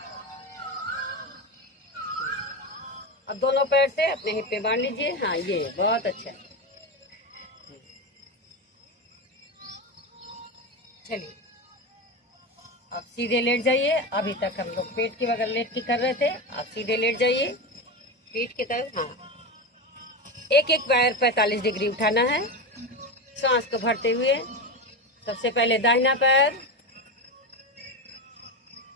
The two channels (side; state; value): both; normal; correlation 0.19